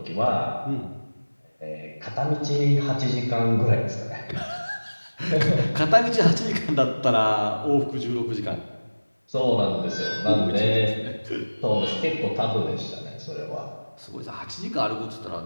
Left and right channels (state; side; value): inverted; both; correlation -1.00